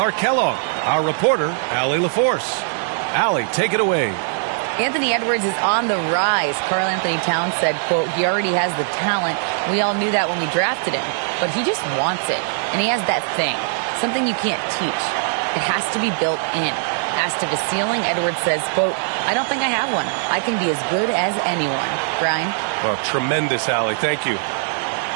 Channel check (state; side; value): silent; left; 58 dB below the other